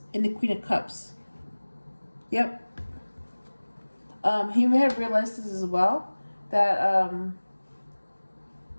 and the Queen of Cups. Yep. He may have realized this as well, that,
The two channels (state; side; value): inverted; both; correlation -1.00